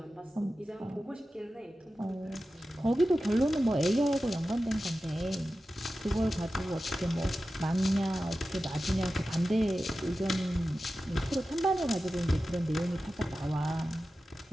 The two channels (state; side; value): normal; both; correlation 0.94